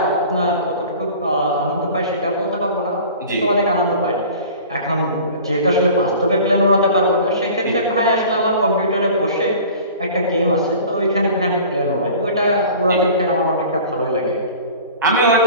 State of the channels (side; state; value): both; inverted; correlation -0.42